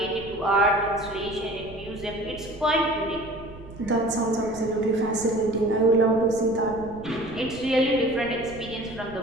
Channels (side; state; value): right; noise; rumble, 17 dB below the sound